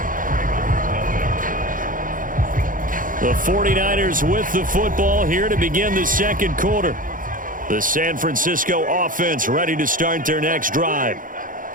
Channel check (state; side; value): late; left; 0.39 ms